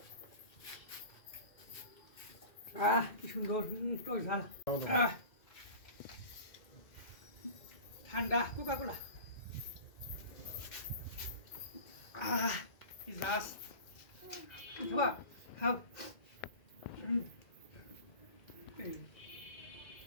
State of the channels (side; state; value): right; late; 2.2 ms